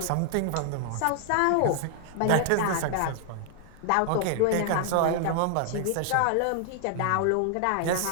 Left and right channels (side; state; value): both; different; correlation 0.00